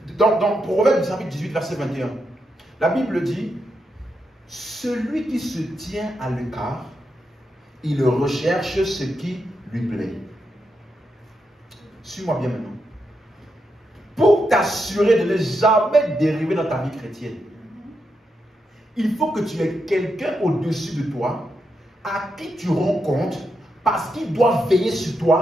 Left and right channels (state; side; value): normal; both; correlation 0.84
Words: dans Proverbe chapitre 18, verset 21, la Bible dit, celui qui se tient à l'écart, il recherche ce qui lui plaît. Suis-moi bien maintenant. Pour t'assurer de ne jamais dériver dans ta vie chrétienne, il faut que tu aies quelqu'un au-dessus de toi à qui tu rends compte parce qu'il doit veiller sur